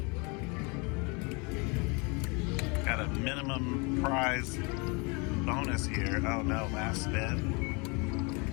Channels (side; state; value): right; quieter; 30.4 dB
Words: Got a minimum prize bonus here. Oh no, last spin.